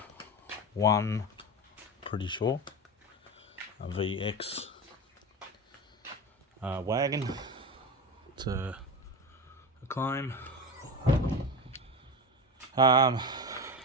pretty sure. A VX wagon. It's a claim.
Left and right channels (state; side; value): normal; both; correlation 0.24